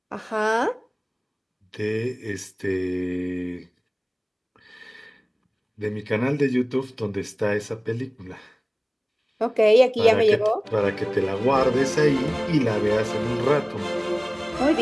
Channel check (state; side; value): identical; both; correlation 1.00